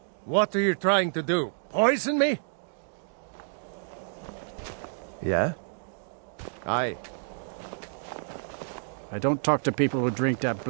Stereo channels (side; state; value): left; silent; digital silence